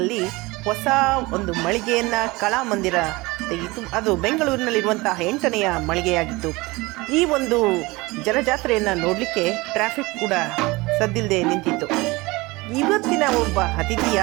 ಹೊಸ ಒಂದು ಮಳಿಗೆಯನ್ನು ಕಲಾಮಂದಿರ ತೆಗೆಯಿತು. ಅದು ಬೆಂಗಳೂರಿನಲ್ಲಿರುವಂತಹ 8ನೆಯ ಮಳಿಗೆಯಾಗಿತ್ತು. ಈ ಒಂದು ಜನಜಾತ್ರೆಯನ್ನು ನೋಡಲಿಕ್ಕೆ ಟ್ರಾಫಿಕ್ ಕೂಡ ಸದ್ದಿಲ್ಲದೆ ನಿಂತಿತ್ತು. ಇವತ್ತಿನ ಒಬ್ಬ ಅತಿಥಿ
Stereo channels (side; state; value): left; quieter; 22.6 dB